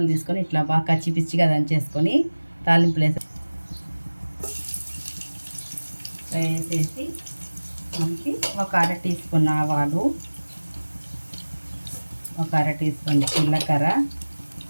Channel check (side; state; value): both; inverted; correlation -1.00